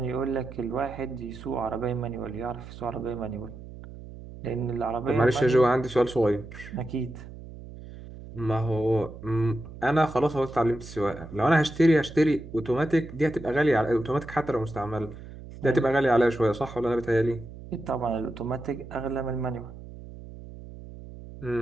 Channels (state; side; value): noise; right; hum, 15 dB below the sound